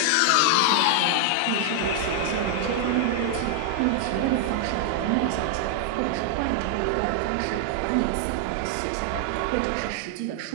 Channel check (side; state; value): both; different; correlation 0.00